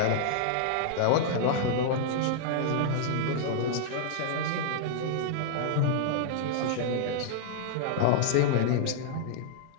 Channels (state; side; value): different; both; correlation -0.01